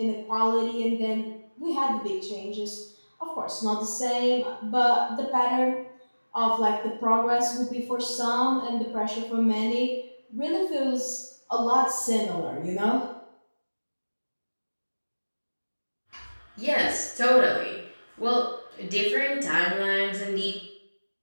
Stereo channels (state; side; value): inverted; both; correlation -1.00